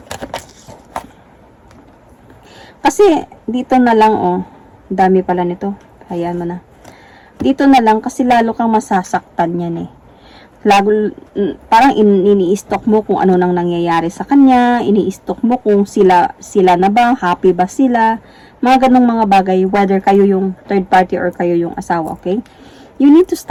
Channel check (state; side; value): identical; both; correlation 1.00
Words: Kasi dito na lang, oh, dami pala nito. Ayan mo na. Dito na lang kasi lalo kang masasaktan yan eh. Parang ini-stock mo kung ano nang nangyayari sa kanya, ini-stock mo kung sila na ba, happy ba sila, mga ganong mga bagay, whether kayo yung third party or kayo yung asawa, okay? You need to